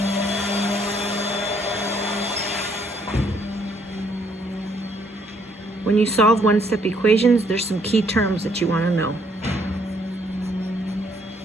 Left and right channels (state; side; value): normal; both; correlation 0.68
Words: When you solve one-step equations, there's some key terms that you want to know.